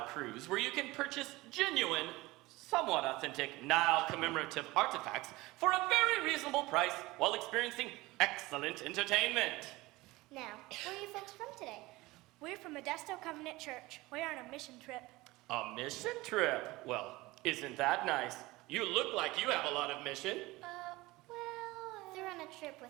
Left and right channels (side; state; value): left; quieter; 20.5 dB